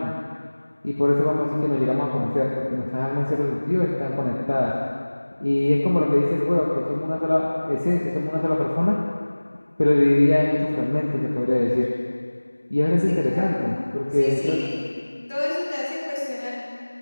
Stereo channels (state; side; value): inverted; both; correlation -1.00